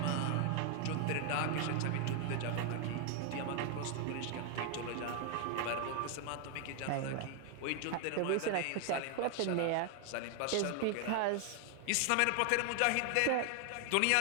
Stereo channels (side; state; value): both; different; correlation 0.00